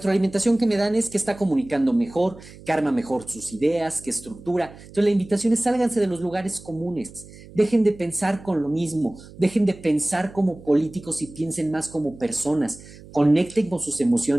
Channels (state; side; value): noise; right; hum, 19 dB below the sound